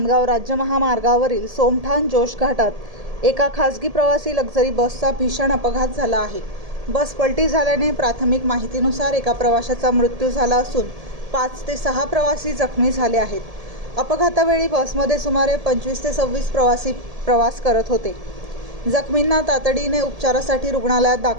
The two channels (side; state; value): left; late; 1.7 ms